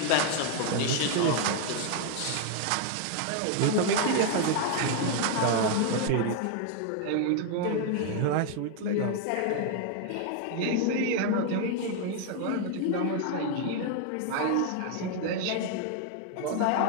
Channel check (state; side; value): different; both; correlation 0.00